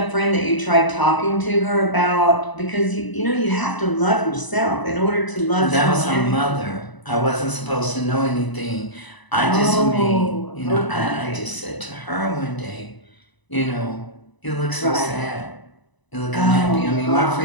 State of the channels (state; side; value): late; right; 1.0 ms